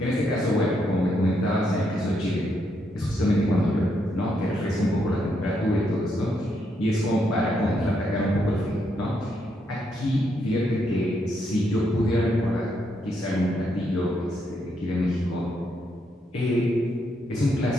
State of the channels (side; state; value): both; normal; correlation 0.77